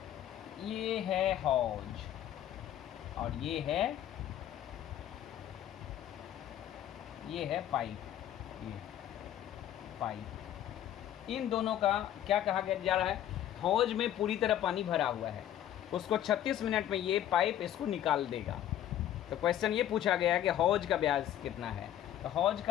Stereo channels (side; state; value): right; quieter; 11.6 dB